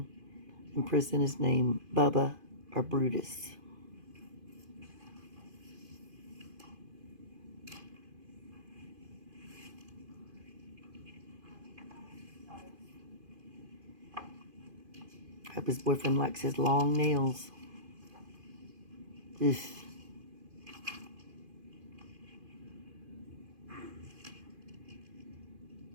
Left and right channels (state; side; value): late; left; 2.5 ms